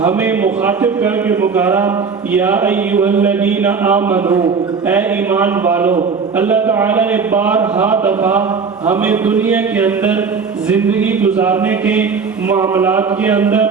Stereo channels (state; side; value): quieter; left; 5.4 dB